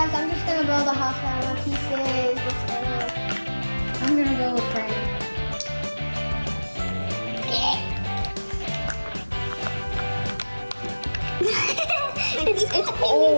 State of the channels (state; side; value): inverted; both; correlation -1.00